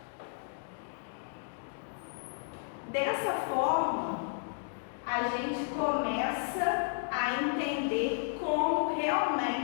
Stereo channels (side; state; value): right; silent; digital silence